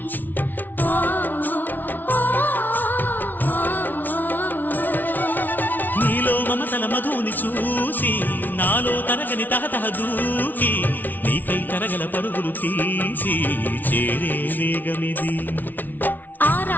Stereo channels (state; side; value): late; right; 0.084 ms